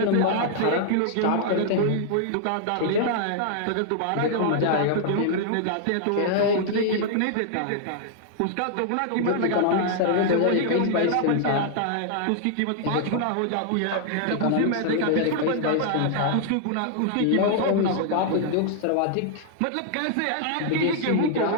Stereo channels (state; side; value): different; both; correlation -0.01